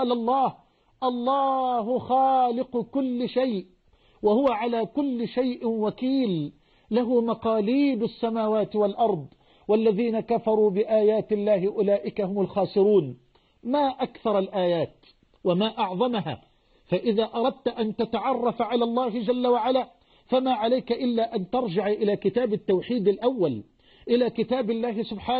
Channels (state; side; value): identical; both; correlation 1.00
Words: الله خالق كل شيء وهو على كل شيء وكيل، له مقاليد السماوات والأرض والذين كفروا بآيات الله أولئك هم الخاسرون. ما أكثر الآيات وما أعظمها. فإذا أردت أن تتعرف على الله جل وعلا فما عليك إلا أن ترجع إلى كتاب التوحيد الأول، إلى كتاب الله